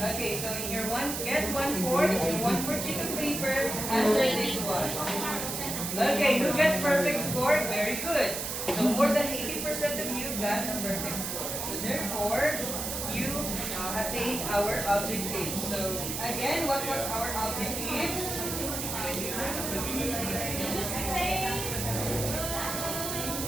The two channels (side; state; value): right; noise; hiss, 4 dB below the sound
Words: Okay, so in your get 1/4, your 1/4 sheet of paper, answer this one. Okay, who got perfect score? Very good. So more than 80% of you got a perfect score. So therefore, you attained our objective. So again, what was our objective?